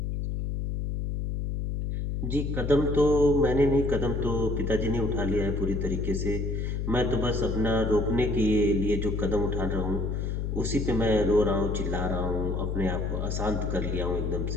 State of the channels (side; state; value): left; noise; hum, 2 dB below the sound